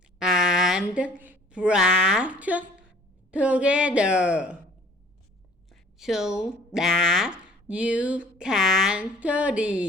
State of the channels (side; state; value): both; normal; correlation 0.53